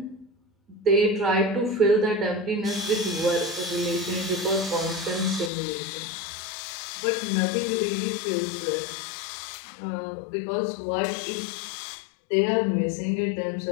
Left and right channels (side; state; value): right; drops out; at 5.5 s